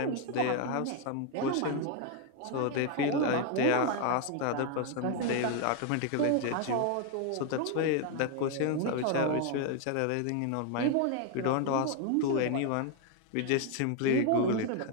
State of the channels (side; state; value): both; different; correlation 0.01